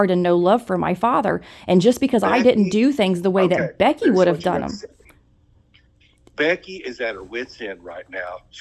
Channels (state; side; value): identical; both; correlation 1.00